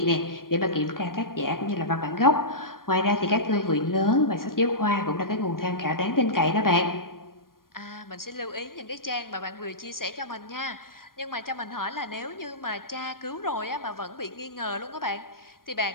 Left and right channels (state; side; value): late; right; 0.91 ms